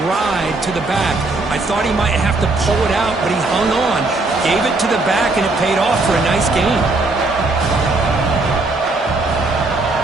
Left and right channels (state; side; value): quieter; left; 3.2 dB